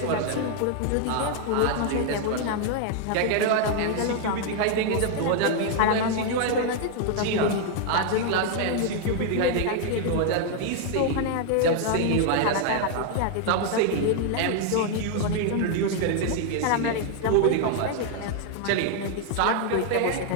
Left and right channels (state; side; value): different; both; correlation 0.00